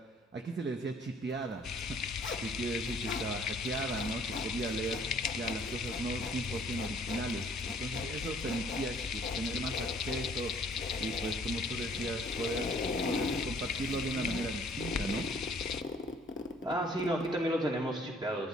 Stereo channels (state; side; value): normal; both; correlation 0.58